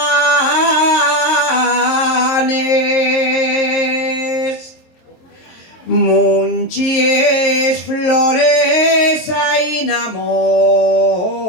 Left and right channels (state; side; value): late; right; 23 ms